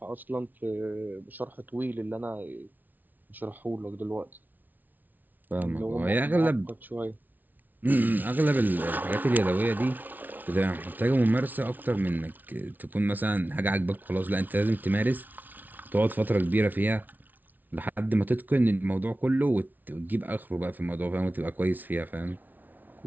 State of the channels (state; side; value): late; left; 0.082 ms